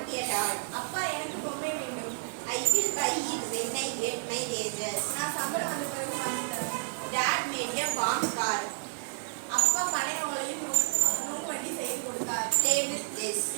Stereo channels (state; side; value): silent; left; 57 dB below the other